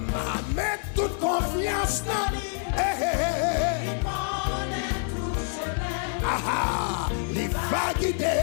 mettre toute confiance dans lui. Il va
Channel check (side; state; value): right; silent; 60 dB below the other